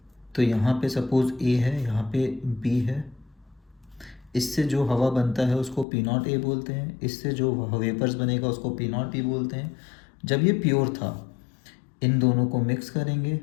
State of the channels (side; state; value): right; drops out; at 5.9 s